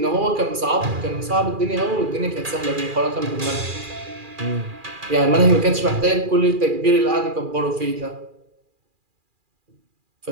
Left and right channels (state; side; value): late; left; 2.4 ms